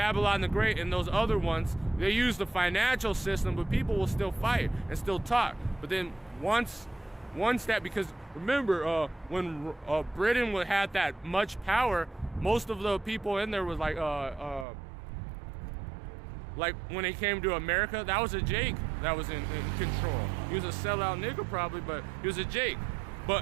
the Great and those other ones, they use the financial system, but people will still fight and still talk. But then once that, because remember, when Britain had that much power, most of the people in there was like when it came to America, that was a Jake that was in control. He was a sellout nigga probably, but he was a Jake.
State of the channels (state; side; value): drops out; left; at 14.7 s